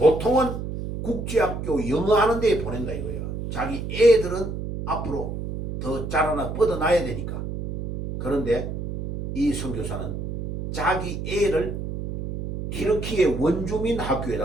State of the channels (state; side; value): noise; right; hum, 6 dB below the sound